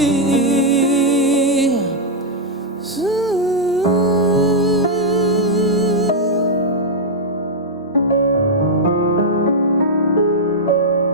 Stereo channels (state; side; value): normal; both; correlation -0.05